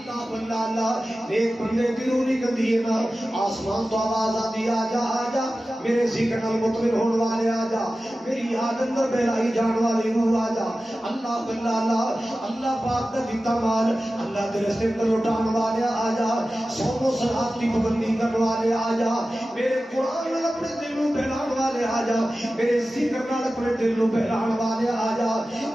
اللہ اللہ ایک بندے کی روح نکلتی ہے نا آسمان تو آواز آتی آ جا میرے ذکر نال مطمئن ہونے والے آ جا میری یاد اندر بہلائی جان والی روح آ جا اللہ اللہ اللہ اللہ پاک دا دیتا مال اللہ تیرے سے اندر لٹان والے آ جا صوم و صلات کی پابندی کرنے والے آ جا میرے قرآن نال اپنے دل نو بہلان والے آ جا میرے ذکر نال اپنے دل نو بہلان والے آ جا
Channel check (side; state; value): both; normal; correlation 0.95